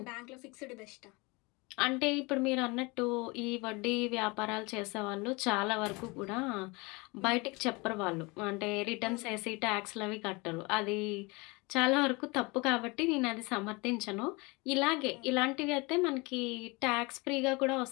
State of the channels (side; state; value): right; quieter; 26.3 dB